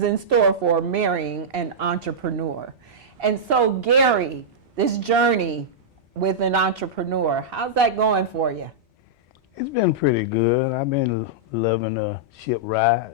in store for marrying an entrepreneur. And so, Gary, this journey with an entrepreneur, how's that going for you? It's been pretty good. I've been loving the ship ride,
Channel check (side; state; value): both; normal; correlation -0.10